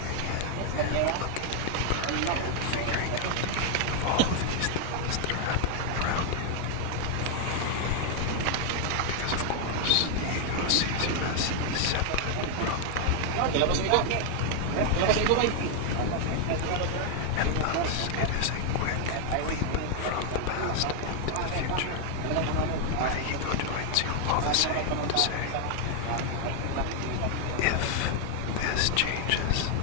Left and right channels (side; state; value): both; different; correlation 0.00